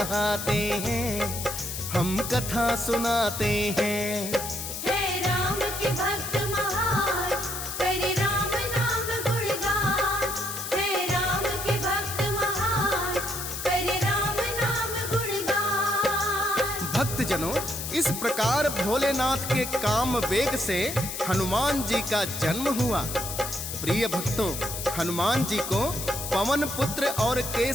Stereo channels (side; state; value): left; noise; hiss, 6 dB below the sound